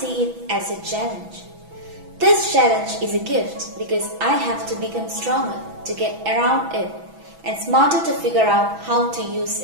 it as a challenge. This challenge is a gift because I have to become stronger to get around it and smarter to figure out how to use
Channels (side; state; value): left; late; 6.1 ms